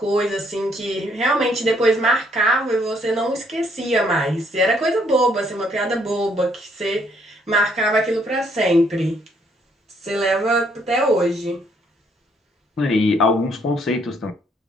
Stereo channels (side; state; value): both; normal; correlation 0.68